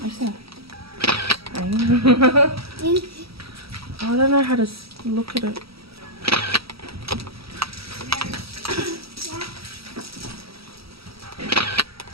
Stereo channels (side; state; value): left; late; 0.76 ms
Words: I said. I don't know how to look at